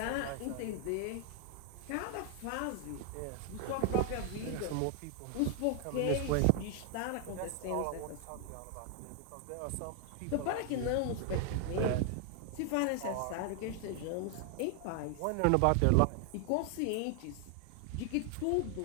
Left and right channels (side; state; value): both; different; correlation 0.00